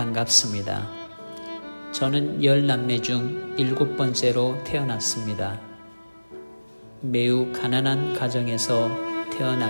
저는 10남매 중 7번째로 태어났습니다. 매우 가난한 가정에서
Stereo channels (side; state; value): both; inverted; correlation -1.00